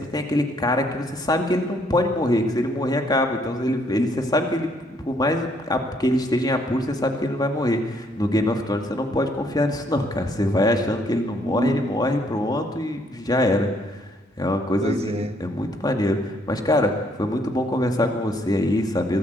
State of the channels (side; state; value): both; normal; correlation 0.68